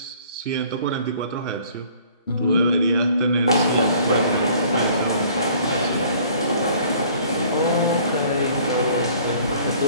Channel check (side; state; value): both; inverted; correlation -0.54